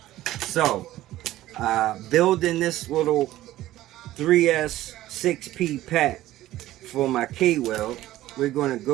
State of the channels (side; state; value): left; quieter; 15.1 dB